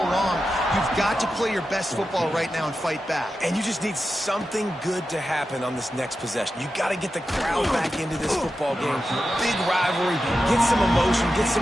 You've got to play your best football right now and fight back. And you just need something good to happen on this next possession. You got to get the crowd back into this football game. Big rivalry. Get some emotion. Get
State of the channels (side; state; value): both; normal; correlation 0.91